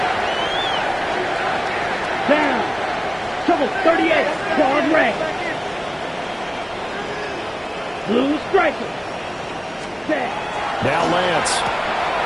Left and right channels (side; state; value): both; identical; correlation 1.00